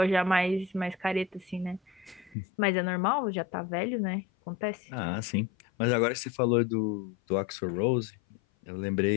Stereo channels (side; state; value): right; drops out; at 2.4 s